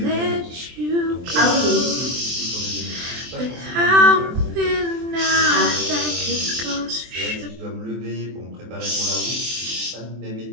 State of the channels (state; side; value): late; left; 23 ms